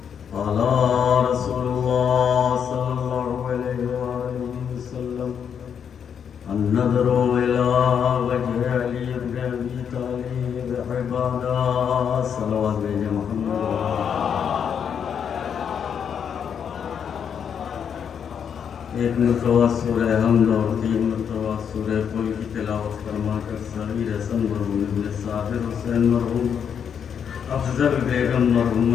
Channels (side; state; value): right; quieter; 7.7 dB